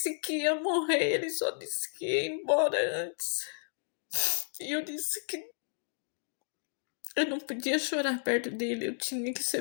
que ia morrer, ele só disse que ia embora antes. E eu disse que eu não podia chorar perto dele, eu tinha que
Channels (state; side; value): silent; right; digital silence